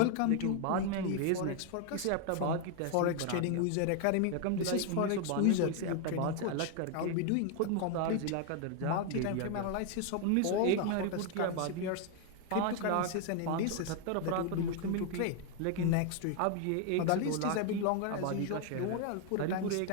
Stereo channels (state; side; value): different; both; correlation 0.01